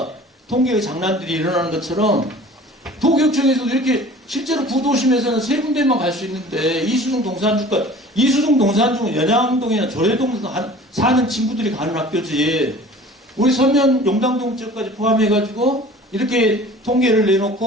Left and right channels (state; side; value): normal; both; correlation 0.45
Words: 통계의 장난들이 일어나는 것처럼 도교육청에서도 이렇게 실제로 구도심에서는 3군데만 갈 수 있는데 이수중, 동산중은 연양동이나 조례동 사는 친구들이 가는 학교지. 우리 서면 용당동 지역까지 포함해가지고 이렇게 통계를